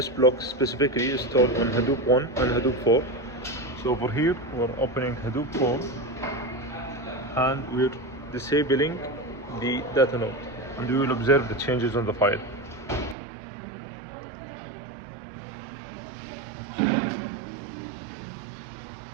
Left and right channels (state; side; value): drops out; left; at 13.2 s